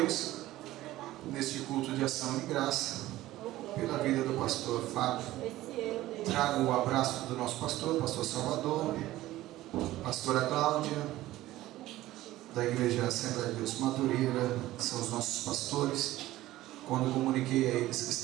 neste culto de ação e graça, pela vida do pastor Fábio. Trago o abraço do nosso pastor Salvador, pastora Cláudia, da Igreja Assembleia de Deus Madureira, que são os nossos pastores. Quando comuniquei a eles que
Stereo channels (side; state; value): left; quieter; 15.9 dB